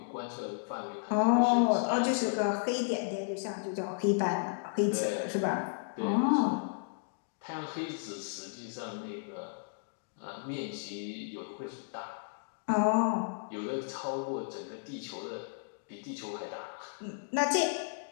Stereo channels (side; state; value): right; silent; digital silence